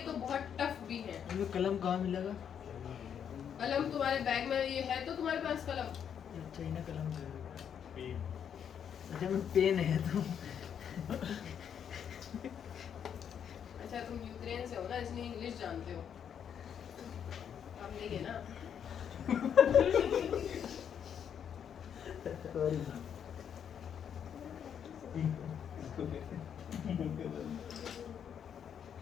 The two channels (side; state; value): right; quieter; 8.3 dB